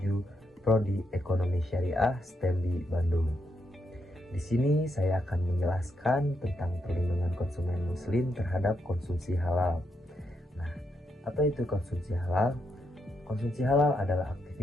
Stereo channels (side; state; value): both; normal; correlation 0.81